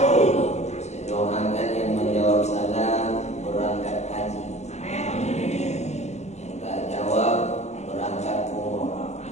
Saya doakan yang menjawab salam berangkat haji. Yang tak jawab berangkat umrah.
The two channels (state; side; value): late; right; 0.32 ms